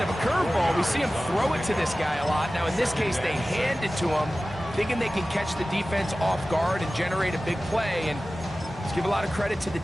of a curveball. We see him throw it to this guy a lot. Now, in this case, they hand it to him, thinking they can catch the defense off guard and generate a big play. And let's give a lot of credit to the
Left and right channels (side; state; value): both; normal; correlation 0.96